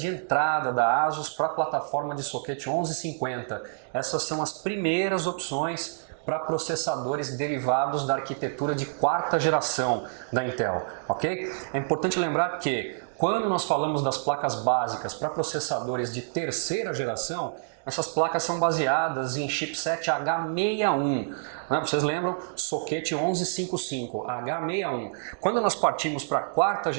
entrada da ASUS para a plataforma de soquete 1150. Essas são as primeiras opções para processadores derivados da arquitetura de quarta geração da Intel, ok? É importante lembrar que quando nós falamos das placas básicas para processadores de terceira geração, essas placas são baseadas em chipset H61, né? Vocês lembram? Soquete 1155, H61. Quando nós partimos para a quarta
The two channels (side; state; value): left; silent; digital silence